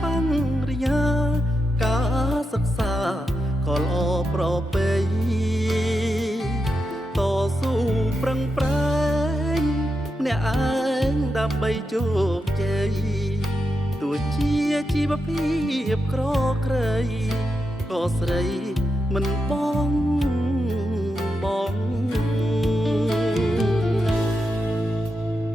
បញ្ញញ្ញាការសិក្សាក៏ល្អប្រពៃតស៊ូប្រឹងប្រែងម្នាក់ឯងដើម្បីជោគជ័យទោះជាជីវភាពក្រក្រៃក៏ស្រីមិនបង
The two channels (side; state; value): both; normal; correlation 0.87